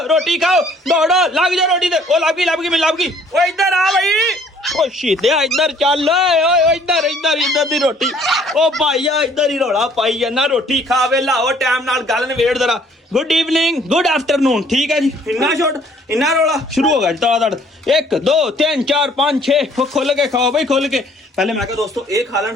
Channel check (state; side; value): normal; both; correlation 0.59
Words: रोटी खाओ दौड़ो लग जाओ रोटी ते लग गई मैं लग गई ओए इधर आ भाई ओ शीदे इधर चल ओए इधर दी रोटी ओ भाईया इधर ही रोला पाई जाना रोटी खा वे लाओ टाइम नाल गल नवेड़ जरा गुड इवनिंग गुड आफ्टरनून ठीक है जी इन्ना छोड़ इन्ना रोला शुरू हो गया दड़ 1 2 3 4 5 6 खोल के खाओ भाई खोल के पहले मैं कहा दोस्तों ये खा लें